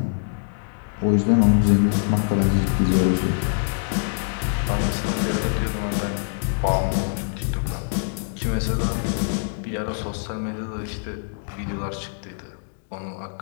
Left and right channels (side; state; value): right; silent; digital silence